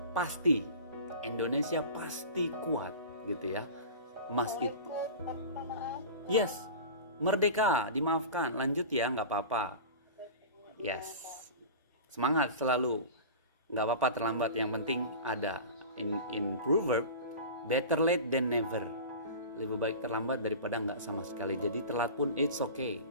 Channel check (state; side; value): inverted; both; correlation -0.34